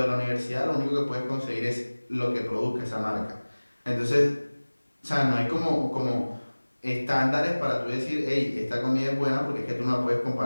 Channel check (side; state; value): both; inverted; correlation -1.00